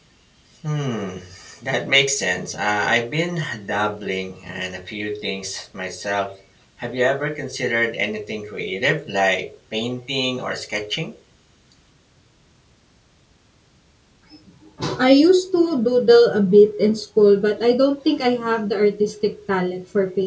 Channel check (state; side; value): identical; both; correlation 1.00